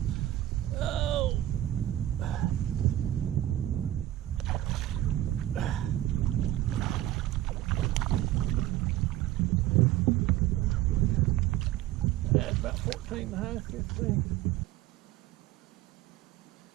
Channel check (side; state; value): left; quieter; 14.1 dB